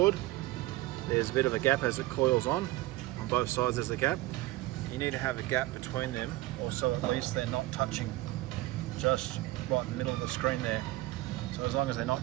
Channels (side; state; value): left; quieter; 18.1 dB